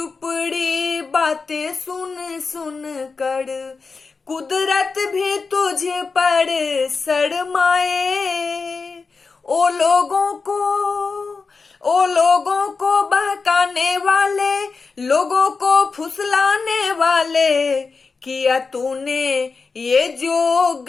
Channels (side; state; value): right; quieter; 4.6 dB